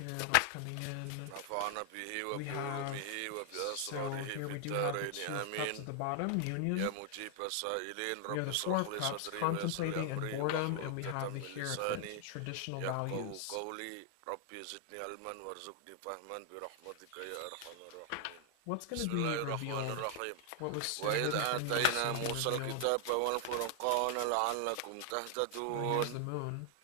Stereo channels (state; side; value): different; both; correlation 0.00